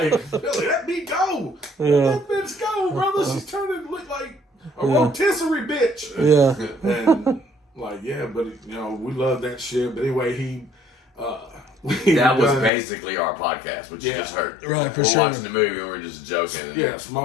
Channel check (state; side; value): drops out; right; at 12.7 s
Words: Billy, let me go. Yeah. Let that bitch go, brother. She's turning to look like a rotisserie bitch. Yeah. And like, yeah, but you know, we love that shit. But anyway, That was basically our podcast, which you just heard. Right, for we're sure. watching the movie and we're just joking. And yeah,